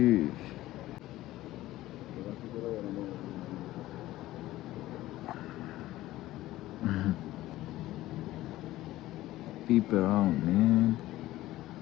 Peep around, man.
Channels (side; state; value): right; quieter; 16.0 dB